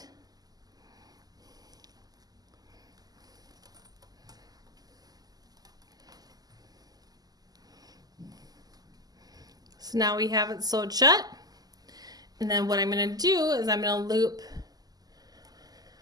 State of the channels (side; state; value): left; late; 0.18 ms